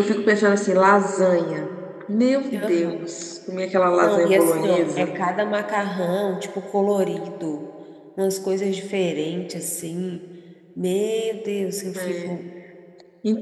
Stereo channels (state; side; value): identical; both; correlation 1.00